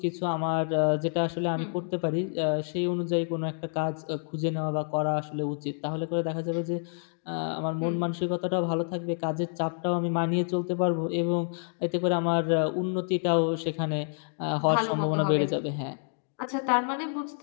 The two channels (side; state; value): right; silent; 59 dB below the other